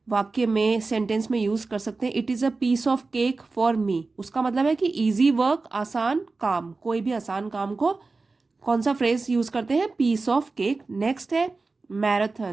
वाक्य में, सेंटेंस में यूज कर सकते हैं it is a piece of cake for me, उसका मतलब है कि इजी वर्क, आसान काम, कोई भी आसान काम को कौन सा फ्रेज यूज करते हैं, पीस ऑफ केक। नेक्स्ट है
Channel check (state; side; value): quieter; left; 3.8 dB